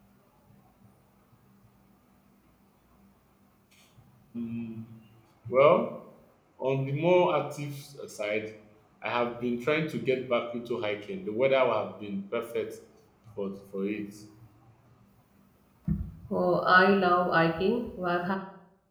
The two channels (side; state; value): both; identical; correlation 1.00